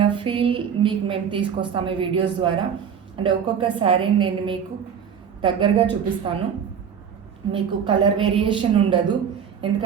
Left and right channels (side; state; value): left; quieter; 7.7 dB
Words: ఫీల్ మీకు మేము తీసుకొస్తాము ఈ వీడియోస్ ద్వారా. అంటే ఒక్కొక్క శారీని నేను మీకు దగ్గరగా చూపిస్తాను. మీకు కలర్ వేరియేషన్ ఉండదు,